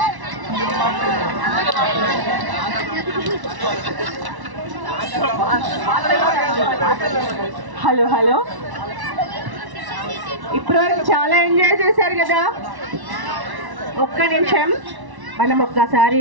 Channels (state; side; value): late; left; 1.1 ms